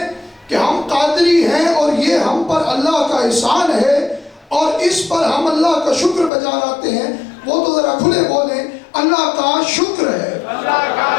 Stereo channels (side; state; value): right; drops out; at 6.3 s